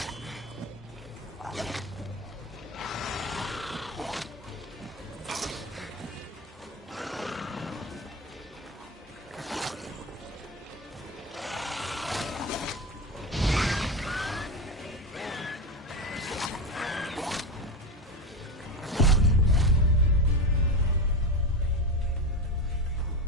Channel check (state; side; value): normal; both; correlation 0.20